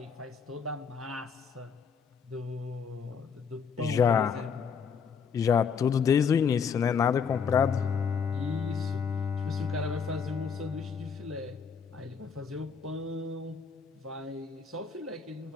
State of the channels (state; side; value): quieter; right; 6.3 dB